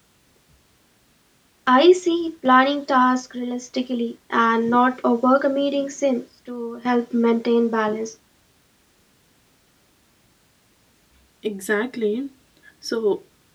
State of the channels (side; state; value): both; identical; correlation 1.00